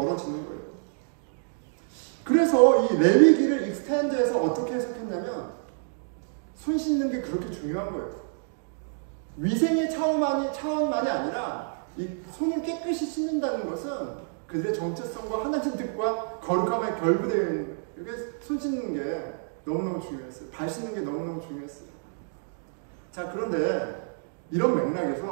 거예요. 그래서 이 레위기를 익스텐드해서 어떻게 해석했냐면 손 씻는 게 그렇게 중요한 거예요. 위생의 차원만이 아니라 이 손을 깨끗이 씻는다는 것은 그들의 정체성과 하나님 뜻과 거룩함에 결부되어 있는 거예요. 이게 손 씻는 게 너무너무 중요했어요. 발 씻는 게 너무너무 중요했어요. 자, 그런데 이런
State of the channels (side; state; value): left; silent; digital silence